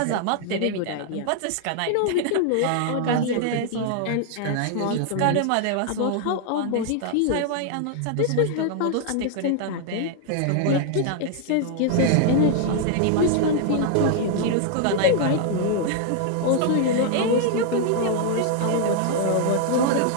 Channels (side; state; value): both; different; correlation 0.00